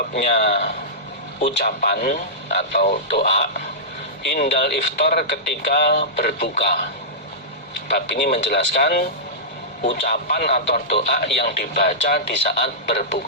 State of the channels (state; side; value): normal; both; correlation -0.16